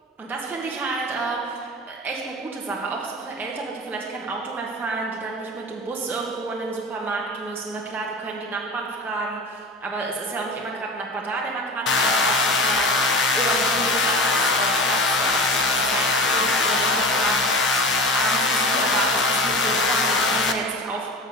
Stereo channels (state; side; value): normal; both; correlation 0.32